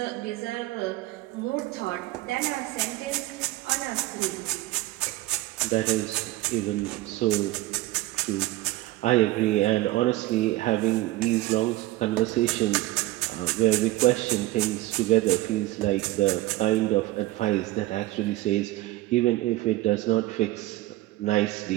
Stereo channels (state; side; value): quieter; left; 17.4 dB